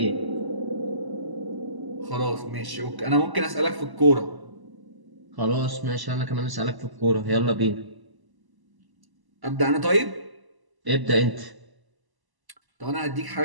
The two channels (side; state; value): left; late; 1.0 ms